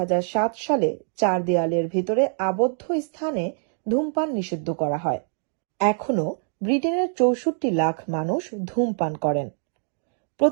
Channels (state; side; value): silent; left; 62 dB below the other